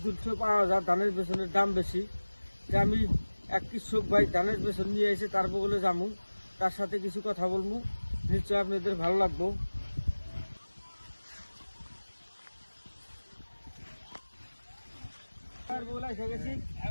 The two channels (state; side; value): inverted; both; correlation -1.00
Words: দুধ পাওয়া যায়, ধানের বেতনের দাম বেশি। যে আমি এক কৃষক ভাই ধানের বেতন নিয়ে এসে তার বগলে যাবো, তার সাথে কিছু কথা বলবো, নিশ্চয় আপনাদের ভালো লাগবো। এসে গেছি,